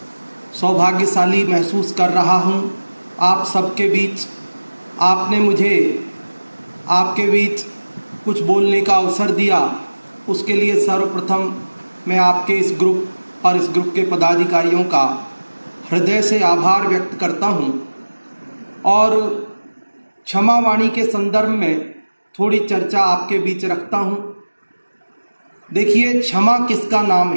सौभाग्यशाली महसूस कर रहा हूँ आप सबके बीच। आपने मुझे आपके बीच कुछ बोलने का अवसर दिया, उसके लिए सर्वप्रथम मैं आपके इस ग्रुप और इस ग्रुप के पदाधिकारियों का हृदय से आभार व्यक्त करता हूँ। और क्षमा वाणी के संदर्भ में थोड़ी चर्चा आपके बीच रखता हूँ। देखिए, क्षमा किसका नाम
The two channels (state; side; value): inverted; both; correlation -1.00